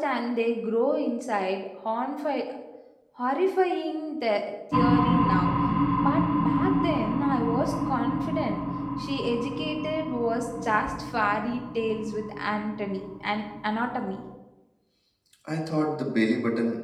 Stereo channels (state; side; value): identical; both; correlation 1.00